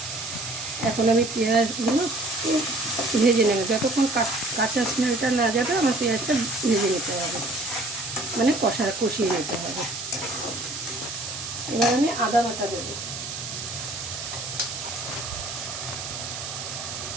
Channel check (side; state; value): right; noise; hiss, 7 dB below the sound